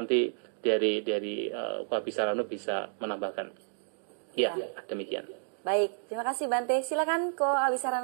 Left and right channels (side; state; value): left; silent; digital silence